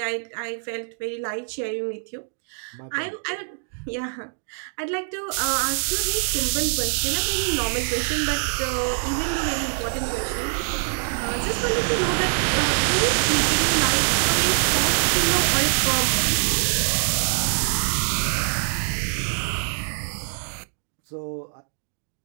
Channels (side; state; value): left; silent; digital silence